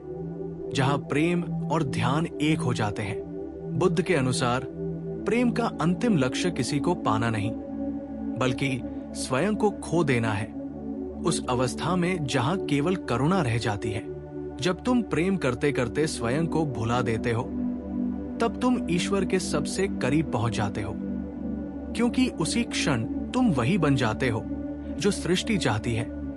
जहां प्रेम और ध्यान एक हो जाते हैं। बुद्ध के अनुसार प्रेम का अंतिम लक्ष्य किसी को पाना नहीं, बल्कि स्वयं को खो देना है। उस अवस्था में जहां केवल करुणा रह जाती है। जब तुम प्रेम करते करते स्वयं को भुला देते हो, तब तुम ईश्वर के सबसे करीब पहुंच जाते हो, क्योंकि उसी क्षण तुम वही बन जाते हो जो सृष्टि चाहती है,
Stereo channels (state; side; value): identical; both; correlation 1.00